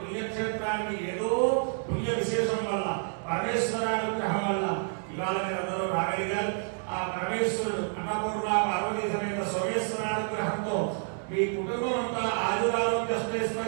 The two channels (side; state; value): left; silent; 55 dB below the other